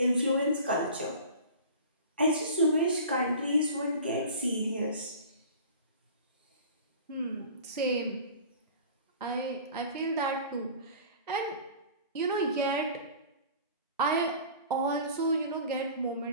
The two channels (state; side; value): inverted; both; correlation -0.41